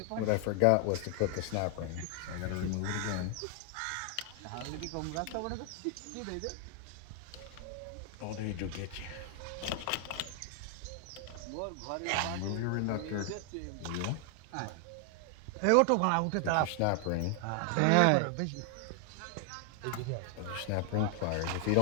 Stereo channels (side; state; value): both; different; correlation 0.00